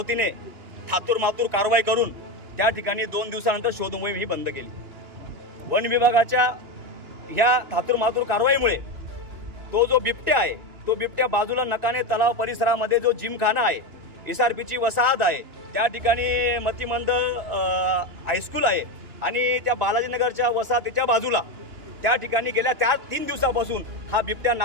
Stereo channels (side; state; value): left; late; 2.9 ms